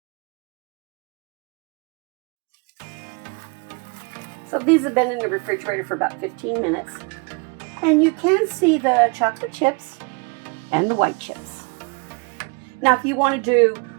So these have been in the refrigerator for about 15 minutes, and you can see the chocolate chips and the white chips. Now, if you want to do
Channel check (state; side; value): quieter; left; 31.5 dB